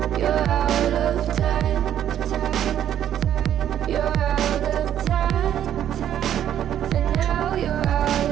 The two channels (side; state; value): left; quieter; 10.6 dB